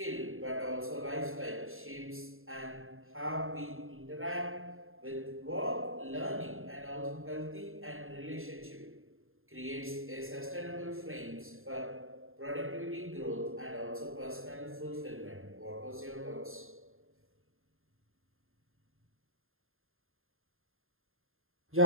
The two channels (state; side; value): late; left; 0.60 ms